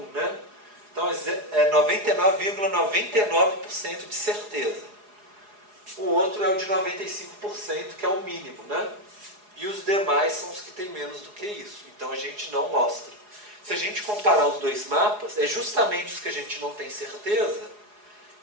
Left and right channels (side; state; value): left; late; 4.8 ms